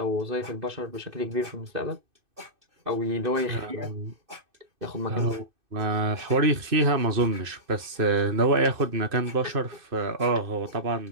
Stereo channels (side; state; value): left; late; 2.6 ms